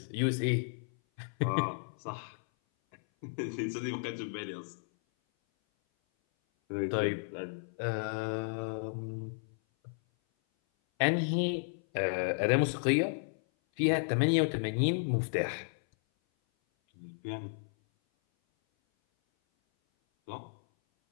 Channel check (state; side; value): silent; right; 56 dB below the other